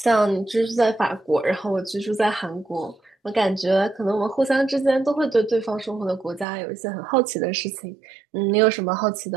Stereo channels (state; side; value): drops out; left; at 6.5 s